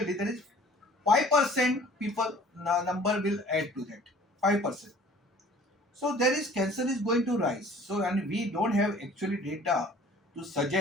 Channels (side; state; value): both; normal; correlation 0.50